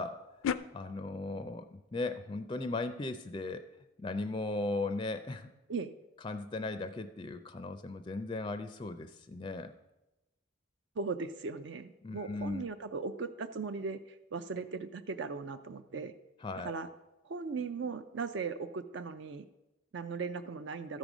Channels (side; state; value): both; normal; correlation 0.32